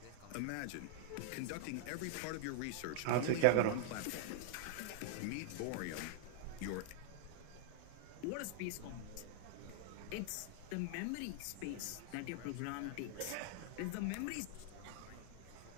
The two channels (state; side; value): different; both; correlation 0.00